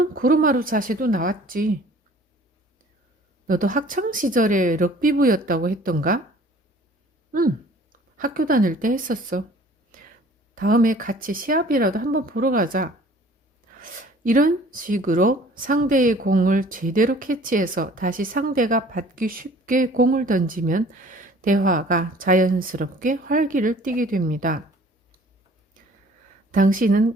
고르마루 자세도 나왔지. 너도 학창시절에 럭비부였다고 했던가? 응, 학교 다닐 때 했었어. 다음에 같이 시합이라도 한번 보러 가자. 이런 식으로 상대의 공을 제대로 캐치해서 다시 상대가 받기 쉽게 공을 던지면 대화가 자연스럽게 활기를 띠게 됩니다. 당신은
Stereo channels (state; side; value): normal; both; correlation 0.51